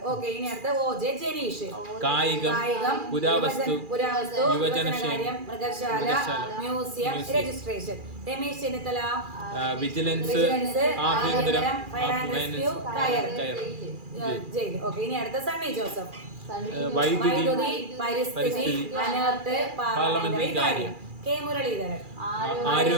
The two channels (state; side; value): late; left; 2.4 ms